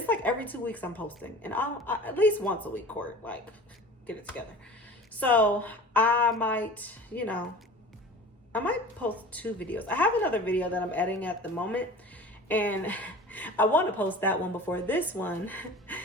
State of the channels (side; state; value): both; normal; correlation 0.39